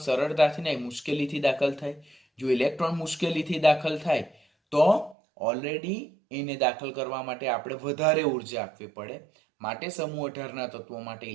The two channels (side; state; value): left; drops out; at 5.2 s